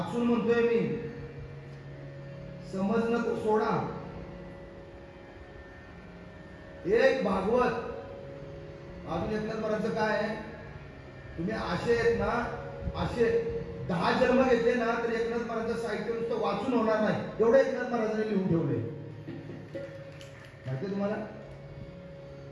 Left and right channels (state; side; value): identical; both; correlation 1.00